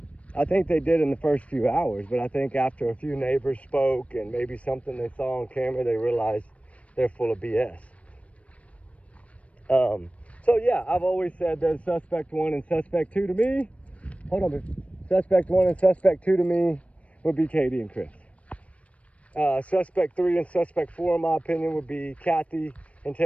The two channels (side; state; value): right; late; 0.064 ms